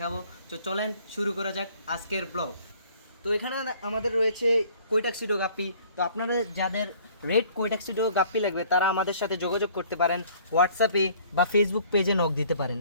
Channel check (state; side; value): inverted; both; correlation -0.56